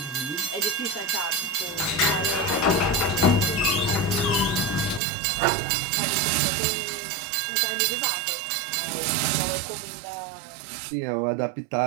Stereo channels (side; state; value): left; drops out; at 5.0 s